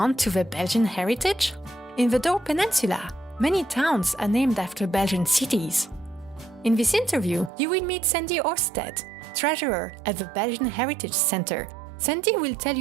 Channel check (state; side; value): drops out; left; at 7.5 s